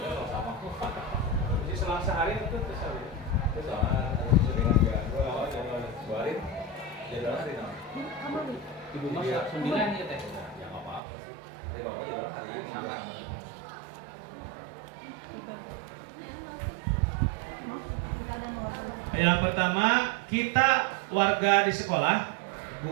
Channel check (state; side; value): drops out; left; at 11.0 s